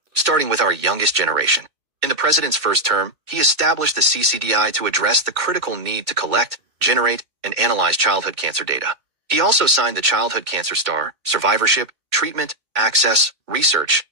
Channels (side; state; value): left; late; 2.3 ms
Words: starting with our youngest generation. In the president's first term, he established the CCDI to address the critical need to collect, generate, and analyze childhood cancer data. He also signed the Childhood Cancer Star, Survivorship, Treatment, Access, Research